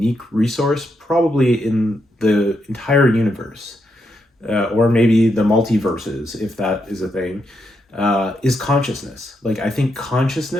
resource probably in the entire universe, or maybe the multiverses, if that is a thing, is consciousness. Like I think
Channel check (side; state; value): both; normal; correlation 0.82